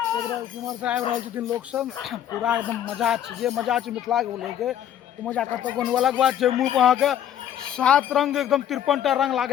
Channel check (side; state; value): right; quieter; 10.4 dB